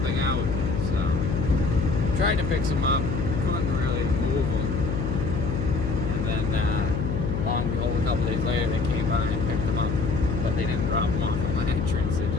out. So tried to pick some up, couldn't really move them, and then lo and behold, a couple days later they came by and picked them up, but they didn't drop them off at my entrance, they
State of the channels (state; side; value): noise; left; hum, 2 dB below the sound